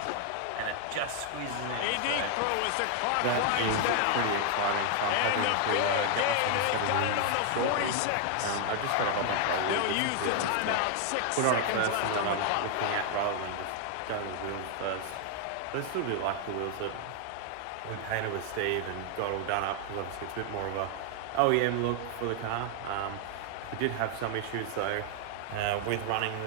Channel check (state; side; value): different; both; correlation 0.00